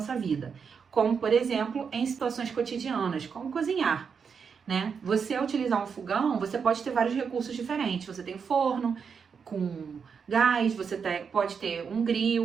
vida, como, por exemplo, em situações cotidianas, como cozinhar, né? Você, ao utilizar um fogão, você pode ter vários recursos diferentes. Você tem um forno com gás, você pode ter um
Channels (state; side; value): quieter; left; 6.2 dB